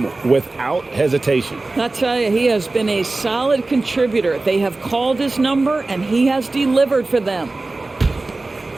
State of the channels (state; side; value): quieter; left; 3.3 dB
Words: without hesitation. I tell you, he has been a solid contributor. They have called his number, and he has delivered for them.